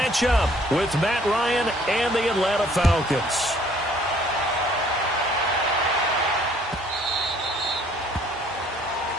up with Matt Ryan and the Atlanta Falcons.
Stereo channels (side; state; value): both; normal; correlation 0.59